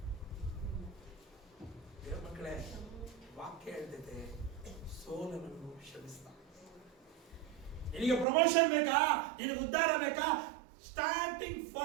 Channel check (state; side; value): drops out; left; at 8.2 s